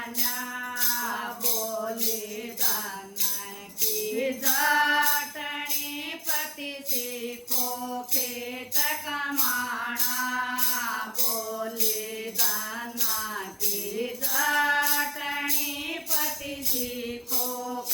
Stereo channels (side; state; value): both; identical; correlation 1.00